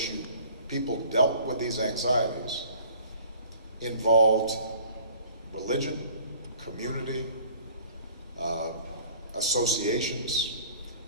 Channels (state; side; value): inverted; both; correlation -0.51